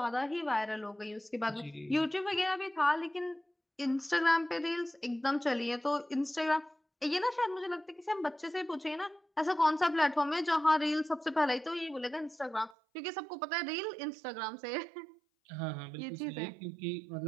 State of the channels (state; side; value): drops out; left; at 12.8 s